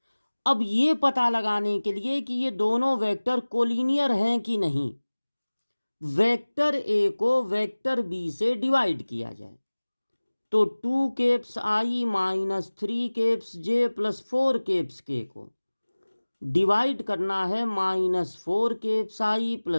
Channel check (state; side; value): inverted; both; correlation -1.00